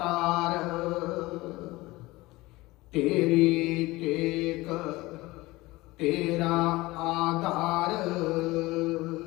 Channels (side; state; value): right; quieter; 20.3 dB